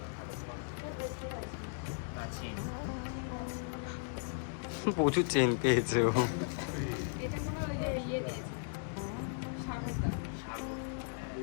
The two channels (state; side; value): silent; right; 53 dB below the other